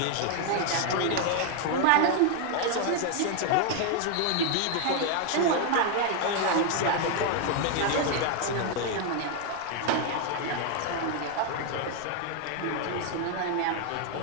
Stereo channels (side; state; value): both; different; correlation 0.01